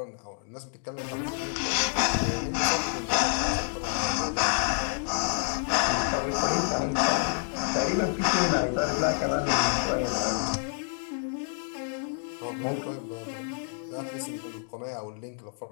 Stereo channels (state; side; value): silent; right; digital silence